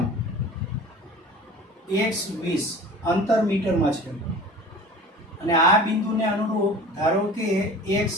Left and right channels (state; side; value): normal; both; correlation 0.40